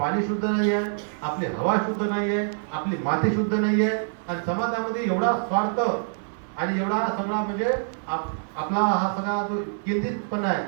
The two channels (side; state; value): left; silent; 61 dB below the other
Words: शुद्ध नाही आहे, आपली हवा शुद्ध नाही आहे, आपली माती शुद्ध नाही आहे, आणि समाजामध्ये एवढा स्वार्थ आणि एवढा सगळा म्हणजे आपला हा सगळा जो केंद्रितपणा आहे